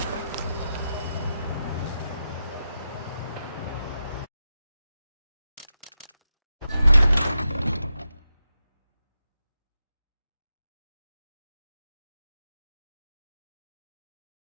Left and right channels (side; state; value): both; inverted; correlation -0.89